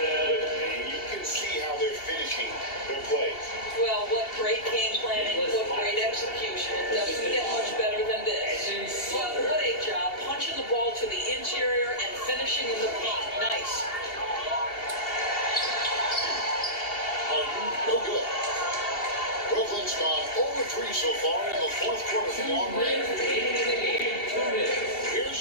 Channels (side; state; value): right; late; 2.7 ms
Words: And you can see how they're finishing their plays. Well, what great game planning, what great execution. It doesn't get much better than this. Well, what a job. Punching the ball to the interior and finishing in the paint. Nice. Harden, no good. Brooklyn's gone over 3 so far in the fourth quarter from long range. Here's